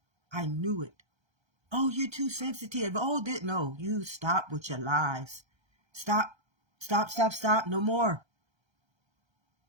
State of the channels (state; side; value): late; left; 1.3 ms